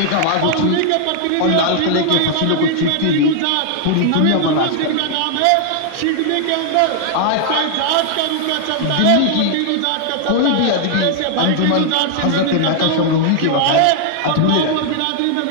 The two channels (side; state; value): both; different; correlation 0.00